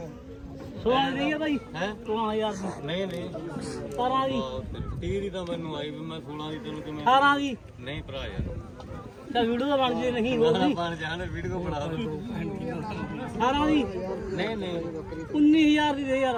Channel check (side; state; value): both; identical; correlation 1.00